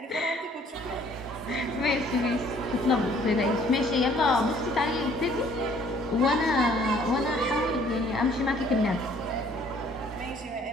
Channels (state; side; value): normal; both; correlation 0.59